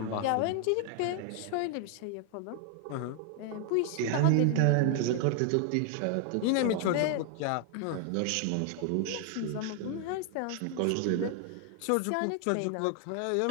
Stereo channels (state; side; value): different; both; correlation 0.00